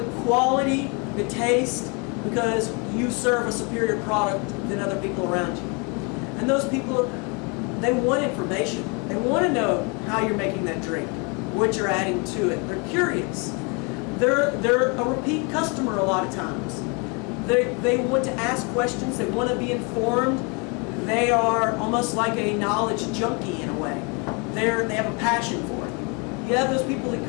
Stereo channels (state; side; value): quieter; right; 32.2 dB